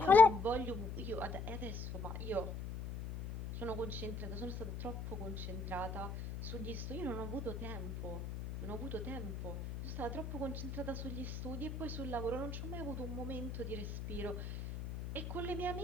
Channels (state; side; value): noise; left; hum, 6 dB below the sound